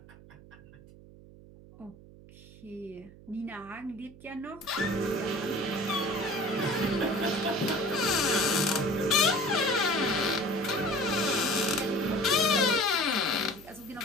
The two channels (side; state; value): right; noise; hum, 21 dB below the sound